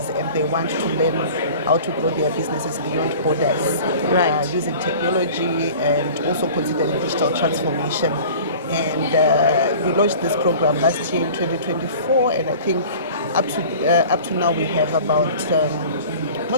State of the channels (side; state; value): both; inverted; correlation -0.42